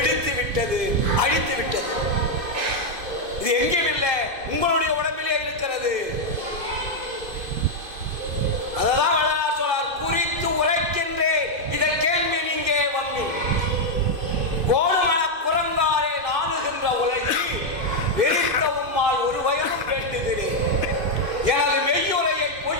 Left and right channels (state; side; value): late; left; 2.5 ms